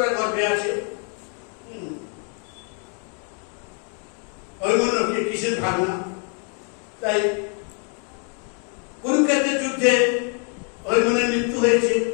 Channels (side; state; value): right; quieter; 39.8 dB